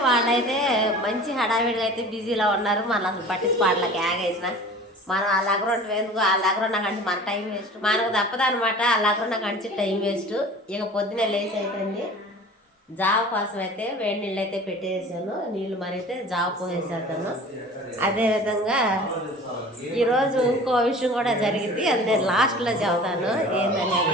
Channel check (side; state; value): both; normal; correlation 0.42